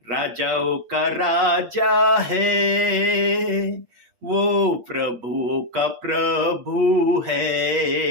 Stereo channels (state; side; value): late; left; 8.4 ms